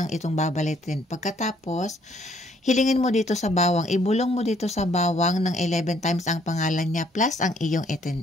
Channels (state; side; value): normal; both; correlation 0.65